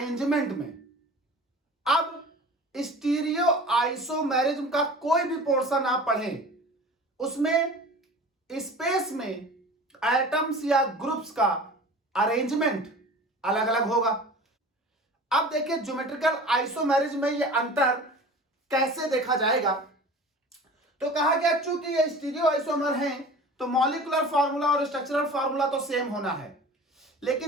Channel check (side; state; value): both; normal; correlation 0.40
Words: में। अब स्टीरियो आइसोमेरिज्म का कोई भी पोर्शन आप पढ़ें, उसमें स्पेस में एटम्स या ग्रुप्स का अरेंजमेंट अलग अलग होगा। अब देखिए ज्योमेट्रिकल आइसोमेरिज्म में ये अंतर कैसे देखा जाएगा। तो कहा गया चूंकि ये स्टीरियो आइसोमर हैं तो मॉलिक्यूलर फार्मूला और स्ट्रक्चरल फार्मूला तो सेम होना है,